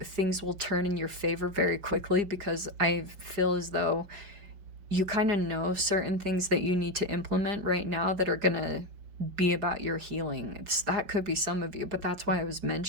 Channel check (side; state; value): left; late; 5.3 ms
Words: will turn in your favor very quickly, because I feel as though you kind of know certain things that you need to implement right now that are going to be about your healing. That could be some of you, but that's why I was